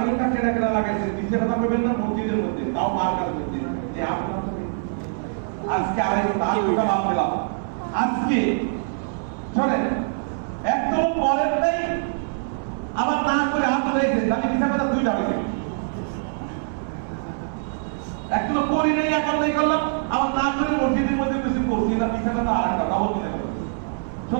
ঘন্টা কেনা লাগাইছে নিচে কথা বলবেন না মসজিদের মধ্যে তাও মার্কার মধ্যে যে আপনারা আজকে 2.5 ঘন্টা বাদ দিলাম আজকে চলেন একদম পরের নাই আবার না করে হাত ধরেছে তাহলে হিসাবে 2টা বাজে একদম করি নেই এখন নাই করলাম আবার না করে মসজিদের মধ্যে বেশি করছি না পিছাটা তো আর কথা বলতে দেবে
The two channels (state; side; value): silent; left; 63 dB below the other